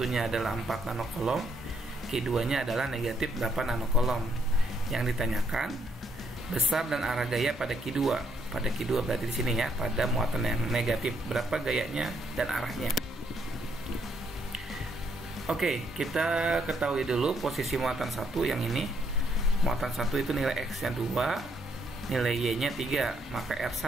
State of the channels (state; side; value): normal; both; correlation 0.73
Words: adalah 4 nanokolom, Q2-nya adalah negatif 8 nanokolom. Yang ditanyakan besar dan arah gaya pada Q2. Pada Q2 berarti di sini ya, pada muatan yang negatif, berapa gayanya dan arahnya. Oke, kita ketahui dulu posisi muatan 1 yang ini. Muatan 1 itu nilai X-nya 2, nilai Y-nya 3. Maka